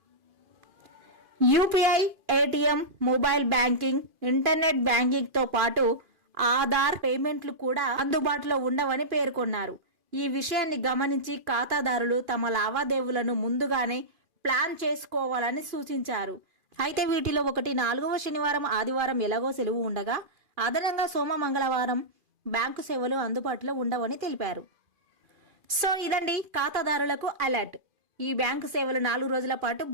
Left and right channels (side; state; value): left; late; 2.4 ms